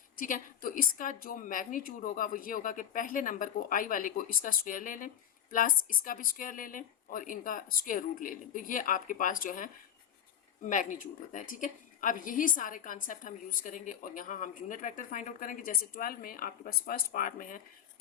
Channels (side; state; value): right; quieter; 9.6 dB